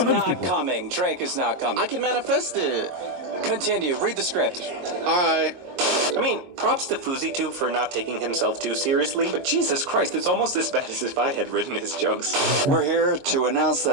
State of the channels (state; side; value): late; left; 22 ms